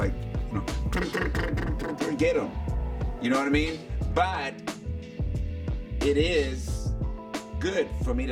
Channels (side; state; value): both; identical; correlation 1.00